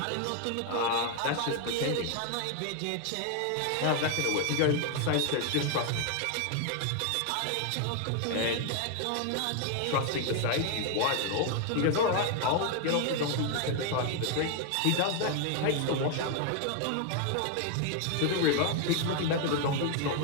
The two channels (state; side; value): different; both; correlation 0.00